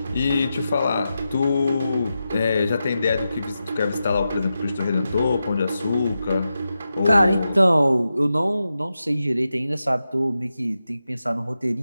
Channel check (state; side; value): inverted; both; correlation -0.90